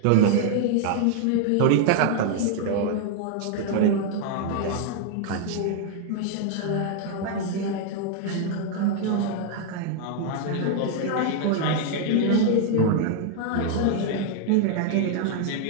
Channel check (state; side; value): different; both; correlation 0.00